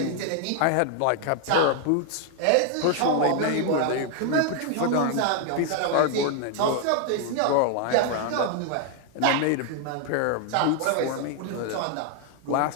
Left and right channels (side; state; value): both; different; correlation 0.00